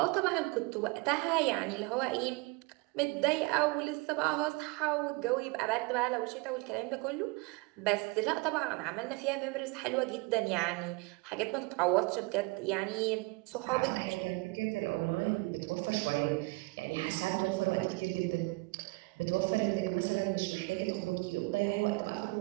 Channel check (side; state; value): left; quieter; 27.0 dB